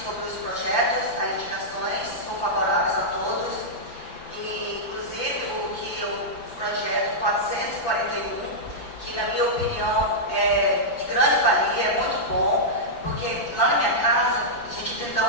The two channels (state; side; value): late; right; 5.9 ms